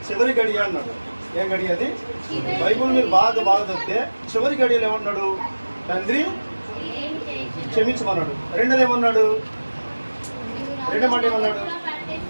అన్నాడు. ఏం గడియ అది? బైబుల్ మీరు బాగా చదివితే చివరి గడియలు ఏమన్నాడు? తండ్రి క్షమించమన్నాడు. రెండోది ఏమన్నాడు? రెండో మాట ఏమన్నాడు?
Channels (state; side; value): inverted; both; correlation -1.00